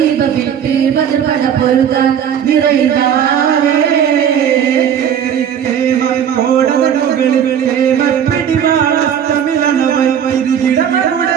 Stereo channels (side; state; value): left; quieter; 8.7 dB